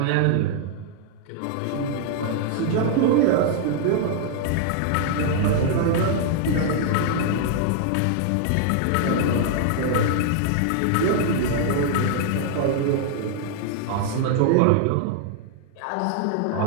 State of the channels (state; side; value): different; both; correlation 0.00